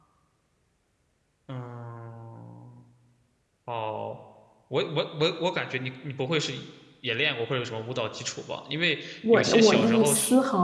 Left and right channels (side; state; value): both; identical; correlation 1.00